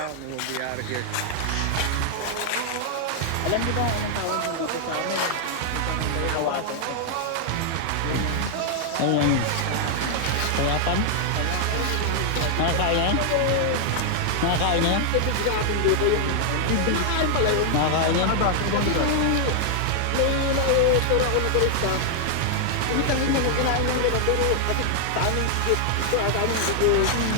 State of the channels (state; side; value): different; both; correlation 0.00